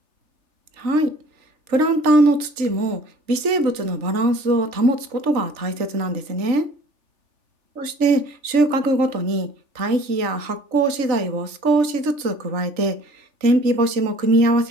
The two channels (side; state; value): left; late; 3.4 ms